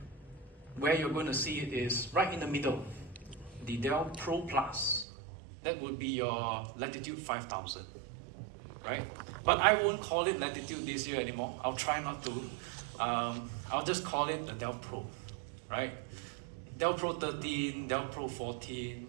Where you're going to see it is right in the middle, the Dell Pro Plus. That would be your Latitude 5000, right? But I won't call it Latitude this year anymore. I'll try not to. I'll just call it the Dell Pro, right? Dell Pro 13, Dell Pro 14,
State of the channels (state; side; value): drops out; left; at 5.1 s